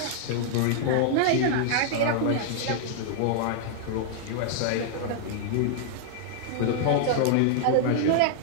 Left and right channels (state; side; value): different; both; correlation -0.01